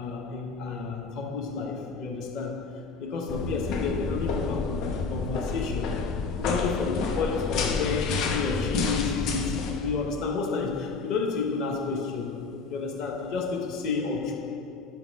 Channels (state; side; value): quieter; right; 4.3 dB